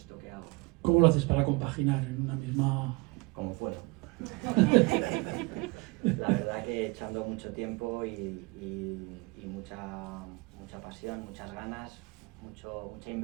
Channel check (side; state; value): left; quieter; 25.2 dB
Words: que hago. ¿Cómo lo haces para compaginar en una misma...? Como puedo. La verdad que echando mucho tiempo y mucha pasión, muchas ganas, mucha